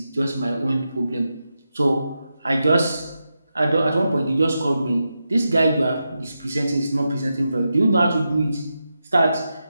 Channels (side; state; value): both; inverted; correlation -0.88